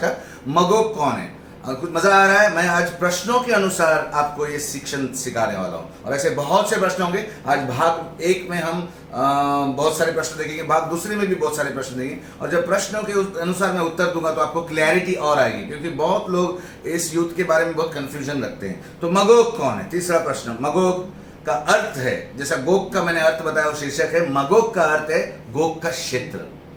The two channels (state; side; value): identical; both; correlation 1.00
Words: मगोग कौन है? कुछ मजा आ रहा है? मैं आज प्रश्नों के अनुसार आपको ये शिक्षण सिखाने वाला हूँ, और ऐसे बहुत से प्रश्न होंगे। आज भाग 1 में हम बहुत सारे प्रश्न देखेंगे, भाग दूसरे में भी बहुत सारे प्रश्न देंगे, और जब प्रश्नों के अनुसार मैं उत्तर दूंगा तो आपको क्लैरिटी और आएगी, क्योंकि बहुत लोग इस युद्ध के बारे में बहुत कंफ्यूजन रखते हैं। तो मगोग कौन है? तीसरा प्रश्न। मगोग का अर्थ है, जैसा गोग का मैंने अर्थ बताया, वो शीर्षक है। मगोग का अर्थ है गोग का क्षेत्र,